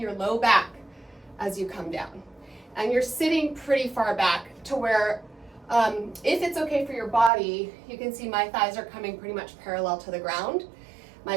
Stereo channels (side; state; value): left; drops out; at 7.3 s